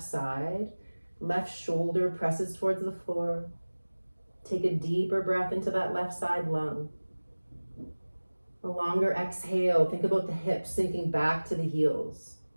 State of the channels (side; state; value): both; inverted; correlation -1.00